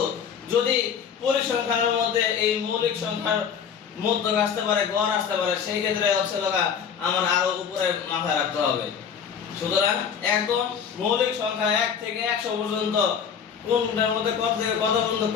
যদি পরিসংখ্যানের মধ্যে এই মৌলিক সংখ্যার মধ্যক আসতে পারে, গড় আসতে পারে, সেই ক্ষেত্রে হচ্ছে লগা আমার আরো উপরে মাথায় রাখতে হবে। সুতরাং একদম মৌলিক সংখ্যা 1 থেকে 100 পর্যন্ত কোনটার মধ্যে কত থেকে কত পর্যন্ত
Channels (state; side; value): quieter; right; 7.3 dB